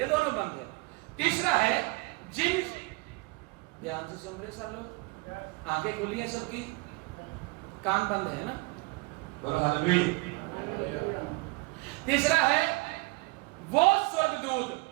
दोनों बंद है। तीसरा है जिन, ध्यान से सुन रहे सब लोग, आंखें खुली हैं सबकी, कान बंद है ना, बोलो हालेलुया। तीसरा है वो स्वर्गदूत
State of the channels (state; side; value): quieter; left; 25.9 dB